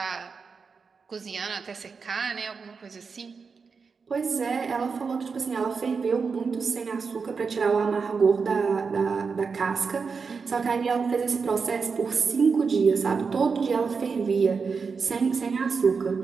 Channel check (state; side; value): quieter; left; 5.2 dB